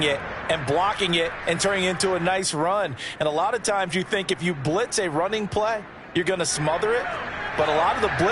it and blocking it and turning it into a nice run. And a lot of times you think if you blitz a running play, you're going to smother it. But a lot of the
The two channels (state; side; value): identical; both; correlation 1.00